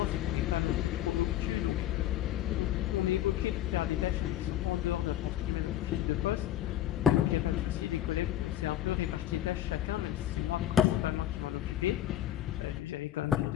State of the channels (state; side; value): quieter; right; 12.1 dB